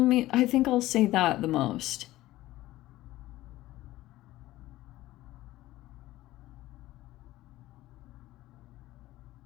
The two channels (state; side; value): quieter; right; 16.4 dB